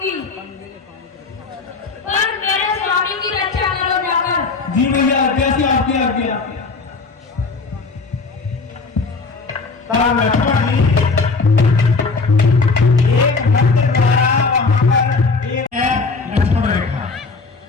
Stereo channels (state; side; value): quieter; right; 4.2 dB